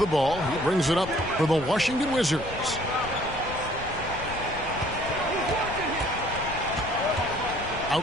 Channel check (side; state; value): left; noise; rumble, 12 dB below the sound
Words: ball. He brings it up for the Washington Wizards.